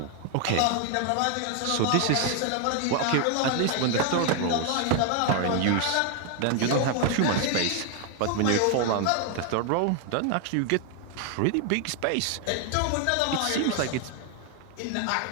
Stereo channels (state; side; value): different; both; correlation 0.01